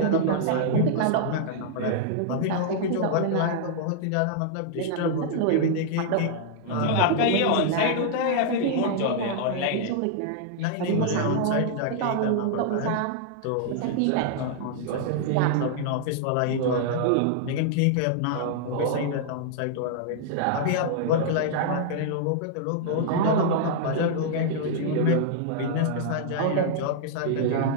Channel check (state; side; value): different; both; correlation -0.01